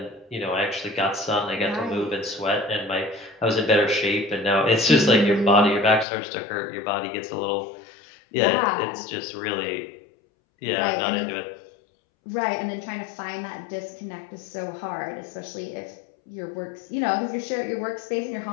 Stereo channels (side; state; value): right; drops out; at 6.1 s